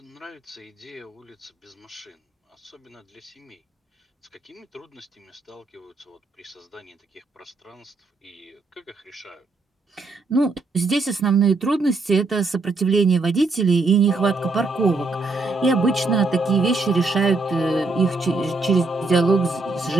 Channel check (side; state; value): left; quieter; 3.5 dB